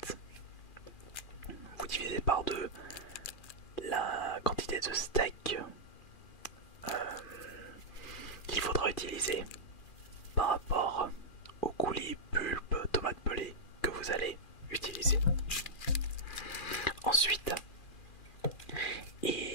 Vous divisez par 2 la quantité de steak qu'il faudra utiliser par rapport au coulis pulpe tomate pelée que vous allez utiliser. Ensuite,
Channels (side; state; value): right; late; 2.4 ms